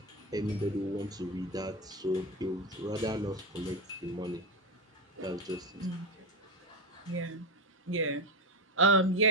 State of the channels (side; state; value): both; normal; correlation 0.14